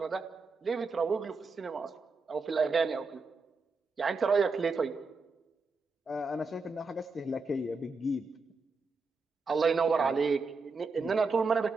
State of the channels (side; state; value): left; quieter; 4.0 dB